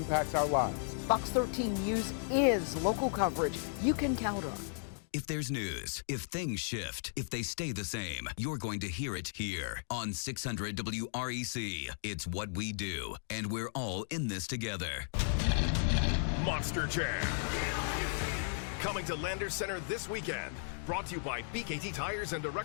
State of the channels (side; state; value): right; silent; digital silence